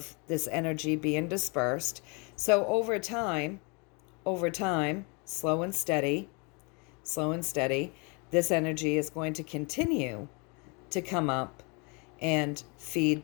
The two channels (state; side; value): quieter; right; 31.7 dB